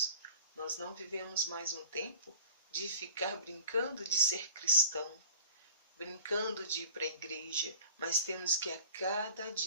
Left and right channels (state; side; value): inverted; both; correlation -0.41